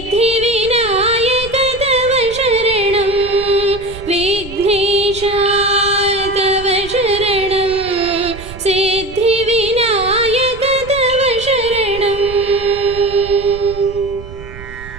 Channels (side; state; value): right; noise; rumble, 15 dB below the sound